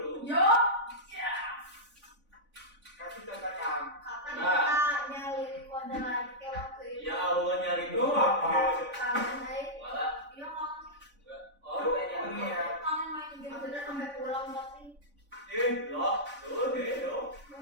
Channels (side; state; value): left; late; 3.5 ms